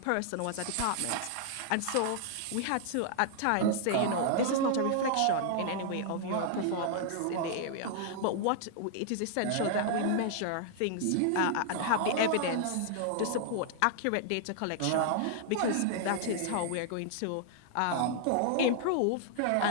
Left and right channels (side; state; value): both; different; correlation 0.00